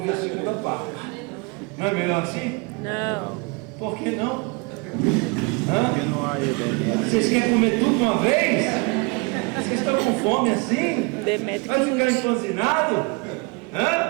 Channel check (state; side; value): quieter; left; 29.6 dB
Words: a segunda parte. Não é melhor assim? Não. Por que não? Porque não há Demétrio. Vocês querem comer tudo de uma vez? Vocês estão com fome assim? Demétrio Vai ficar empanzinado?